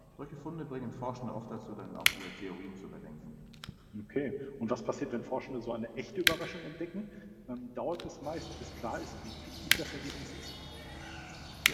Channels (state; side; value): identical; both; correlation 1.00